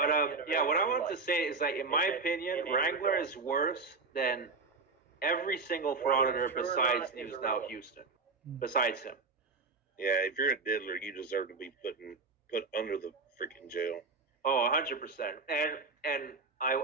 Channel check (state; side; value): quieter; left; 4.1 dB